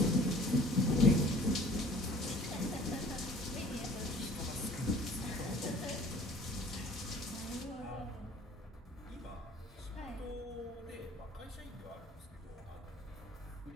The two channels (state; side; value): normal; both; correlation 0.50